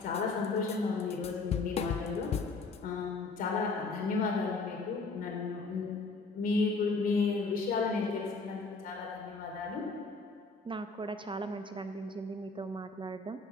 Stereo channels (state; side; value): quieter; right; 3.8 dB